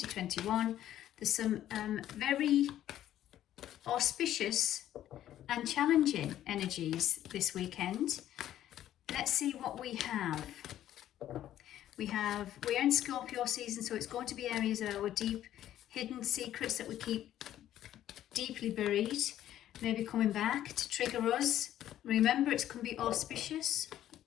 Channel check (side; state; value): right; quieter; 12.2 dB